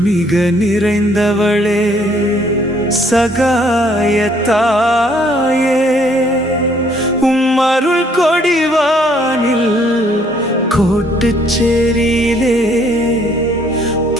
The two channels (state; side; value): normal; both; correlation 0.64